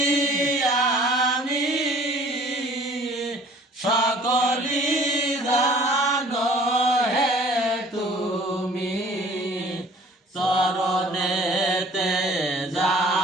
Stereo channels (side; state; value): both; normal; correlation 0.52